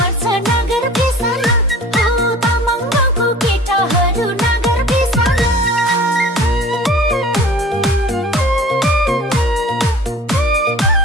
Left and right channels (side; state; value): both; normal; correlation 0.45